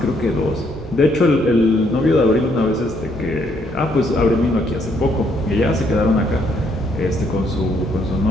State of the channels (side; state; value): both; normal; correlation 0.71